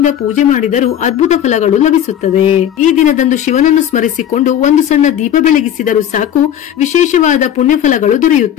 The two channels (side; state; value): right; quieter; 10.2 dB